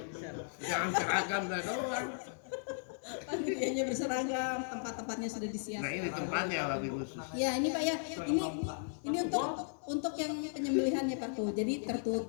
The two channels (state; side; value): silent; right; 54 dB below the other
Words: Jangan seragam dah doang. Panitianya berseragam, tempat-tempatnya sudah disiapkan. Nah ini tempatnya lagi khusus. Ya ini Pak ya, ini untuk yang penyembelihannya Pak tuh. Jadi